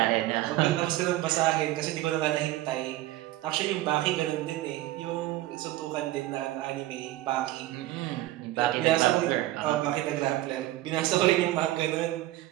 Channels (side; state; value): left; quieter; 16.0 dB